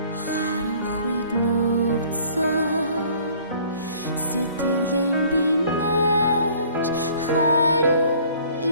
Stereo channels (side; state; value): both; inverted; correlation -0.55